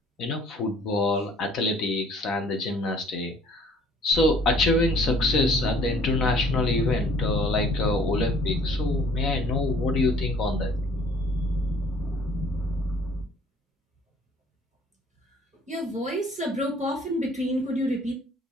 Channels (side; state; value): both; normal; correlation 0.56